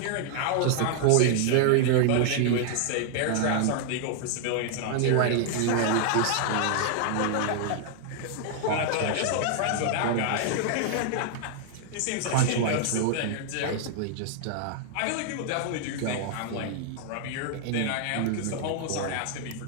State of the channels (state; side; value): different; both; correlation 0.00